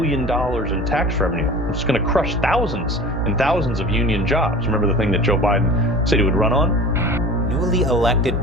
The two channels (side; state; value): both; normal; correlation 0.39